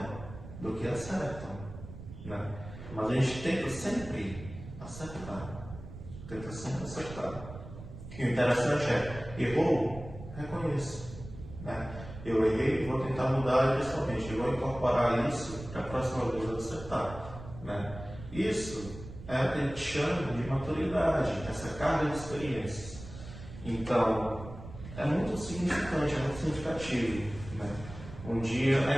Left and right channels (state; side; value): noise; right; rumble, 13 dB below the sound